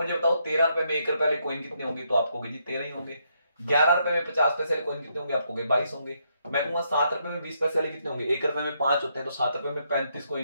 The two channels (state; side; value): inverted; both; correlation -0.76